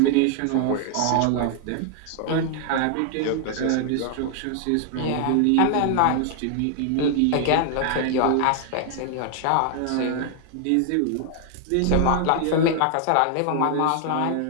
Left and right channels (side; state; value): both; different; correlation 0.00